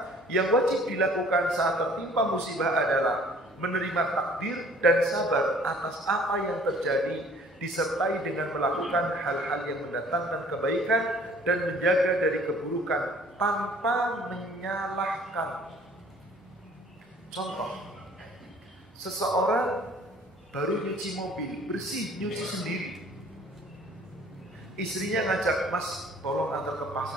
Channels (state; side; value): normal; both; correlation 0.54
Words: yang wajib dilakukan saat tertimpa musibah adalah menerima takdir dan sabar atas apa yang terjadi, disertai dengan melakukan hal-hal yang mendatangkan kebaikan dan menjaga dari keburukan tanpa menyalahkan. Contoh, seseorang baru nyuci mobil, bersih, nyuci sendiri. Istrinya ngajak, "Mas, tolong antar ke